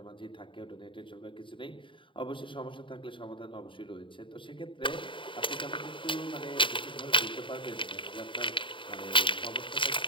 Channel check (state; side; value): late; right; 0.25 ms